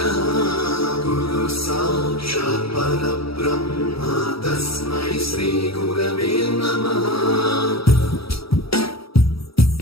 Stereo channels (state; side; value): late; right; 0.76 ms